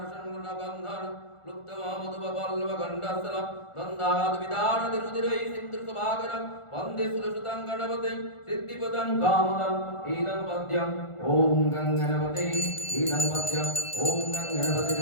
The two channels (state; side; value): late; right; 1.4 ms